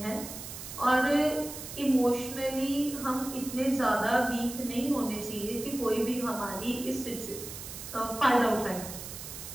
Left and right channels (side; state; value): right; noise; hiss, 10 dB below the sound